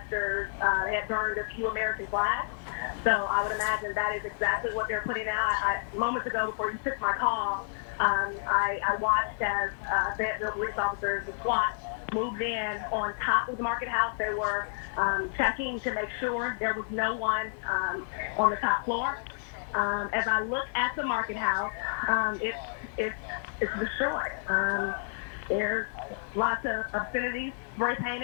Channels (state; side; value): silent; right; digital silence